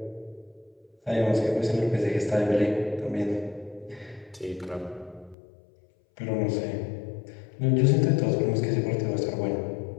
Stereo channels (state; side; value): drops out; right; at 5.4 s